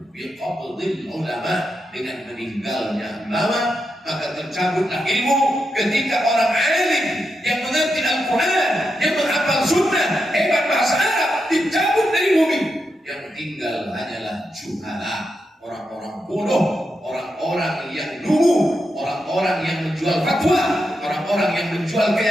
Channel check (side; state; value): both; normal; correlation 0.85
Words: biqabdil ulama, dengan meninggalnya ulama, maka tercabutlah ilmu. Ketika orang alim yang mengerti Al-Quran, yang menghafal sunnah, hebat bahasa Arab, dicabut dari bumi. Yang tinggal hanyalah juhala, orang-orang bodoh, orang-orang yang lugu, orang-orang yang menjual fatwa, orang-orang yang menjual